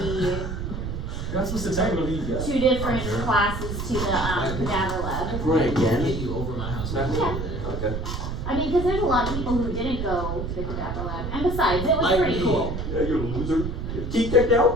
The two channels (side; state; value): right; noise; rumble, 4 dB below the sound